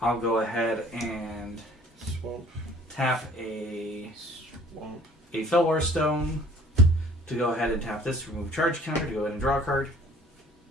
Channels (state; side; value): normal; both; correlation 0.54